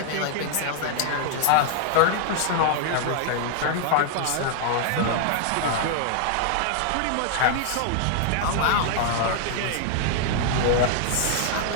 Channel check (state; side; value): different; both; correlation 0.00